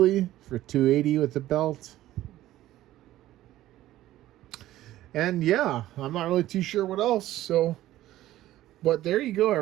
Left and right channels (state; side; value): quieter; left; 14.6 dB